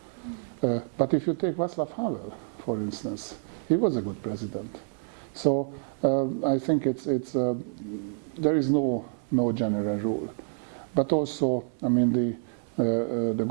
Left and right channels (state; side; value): silent; left; 59 dB below the other